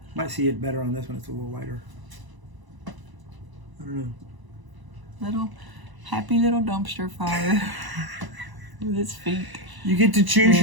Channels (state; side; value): late; left; 1.0 ms